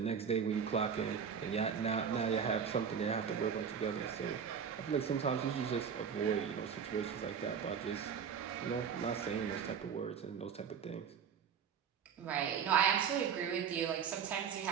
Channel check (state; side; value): quieter; left; 7.1 dB